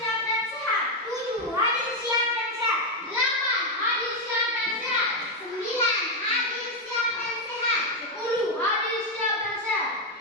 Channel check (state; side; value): normal; both; correlation 0.04